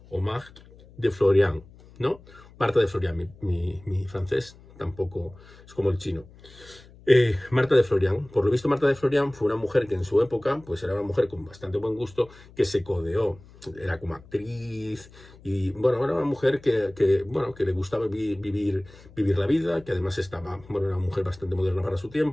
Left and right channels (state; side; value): noise; left; hum, 23 dB below the sound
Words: de Florian, ¿no? Marta de Florian, mi francés tampoco es como el chino. Marta de Florian. Por lo visto, Marta de Florian fue una mujer que en su época pues era una mujer con bastante buen gusto, que se codeó, era como actriz y bueno, era una mujer que le gustaba vivir la vida, que además era una mujer bastante moderna para su